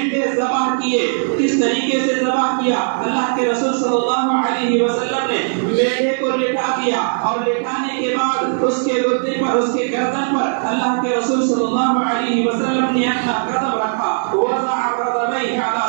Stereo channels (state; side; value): silent; left; 56 dB below the other